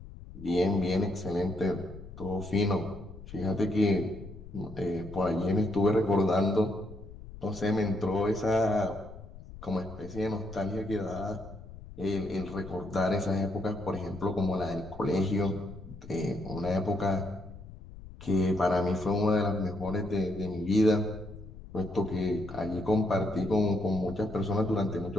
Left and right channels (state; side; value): noise; left; rumble, 15 dB below the sound